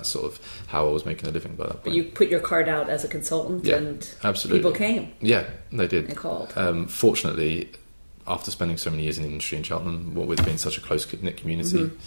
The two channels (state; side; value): inverted; both; correlation -1.00